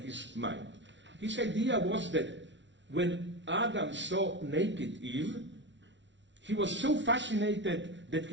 his mind. His idea was that when Adam saw naked Eve, he was so fascinated that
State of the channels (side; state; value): left; late; 0.53 ms